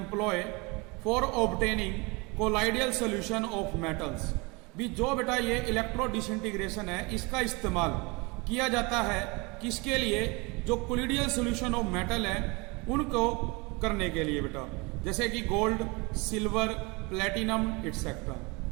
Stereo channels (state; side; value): quieter; left; 27.3 dB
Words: for obtaining colloidal solution of metals. भी जो बेटा ये इलेक्ट्रो डिसइंटीग्रेशन है इसका इस्तेमाल किया जाता है किसके लिए? जो कोलिडियल सॉल्यूशन ऑफ मेटल है उनको करने के लिए बेटा, जैसे कि गोल्ड, सिल्वर, प्लेटिनम एटसेट्रा।